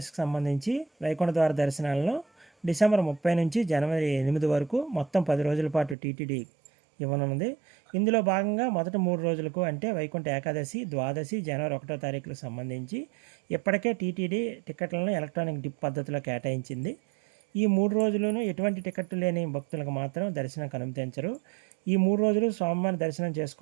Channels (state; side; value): drops out; left; at 6.0 s